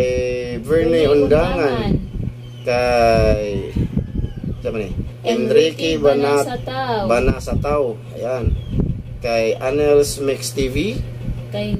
Verne Undangan, kay Enrique Banasatao, ayan, kay Anels Mix TV, kay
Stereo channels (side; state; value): both; identical; correlation 1.00